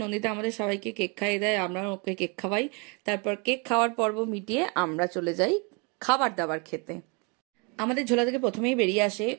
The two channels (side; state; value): left; quieter; 31.1 dB